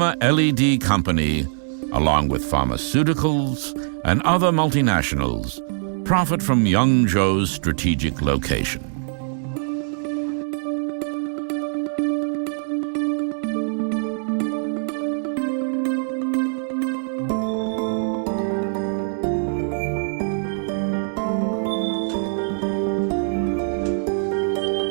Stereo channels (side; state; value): left; silent; digital silence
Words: LED Company, along with pharmaceuticals and other multinationals, profit from Yangzhou's strategic location.